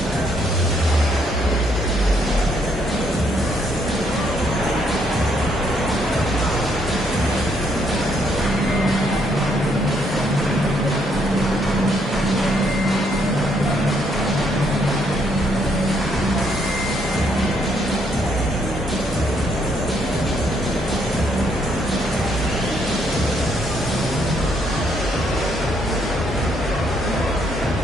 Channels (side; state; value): both; normal; correlation 0.72